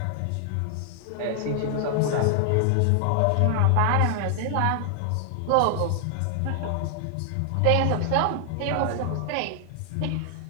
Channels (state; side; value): different; both; correlation 0.00